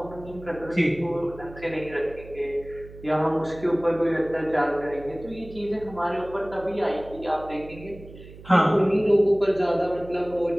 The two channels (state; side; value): noise; right; hum, 17 dB below the sound